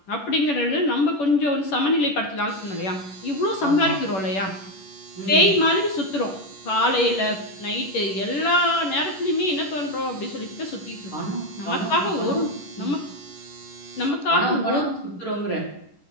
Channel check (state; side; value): late; right; 11 ms